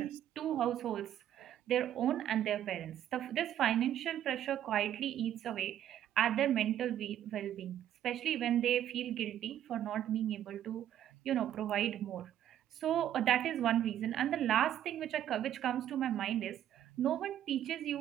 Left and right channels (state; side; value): quieter; left; 11.2 dB